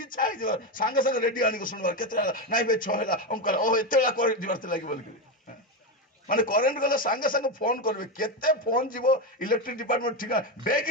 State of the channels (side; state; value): both; normal; correlation 0.13